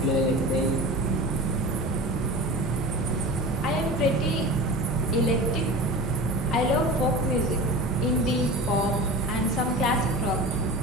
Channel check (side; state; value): both; normal; correlation 0.33